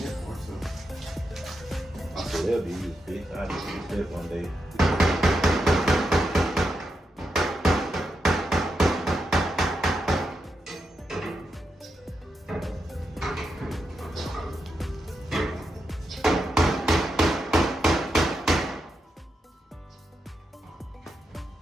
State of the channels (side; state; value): both; normal; correlation 0.85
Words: it for so. I said that'll be used, bitch. I just use that one day.